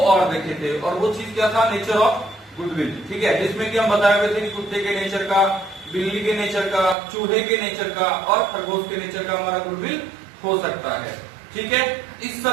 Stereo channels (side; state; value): left; drops out; at 7.0 s